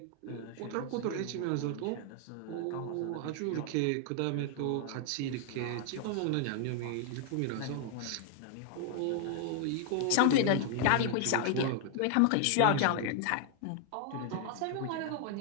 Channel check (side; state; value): both; different; correlation 0.00